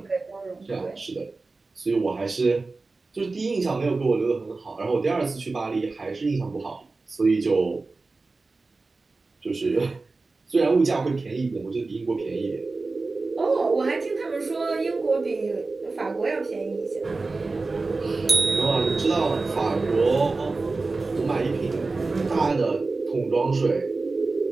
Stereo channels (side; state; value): left; quieter; 3.7 dB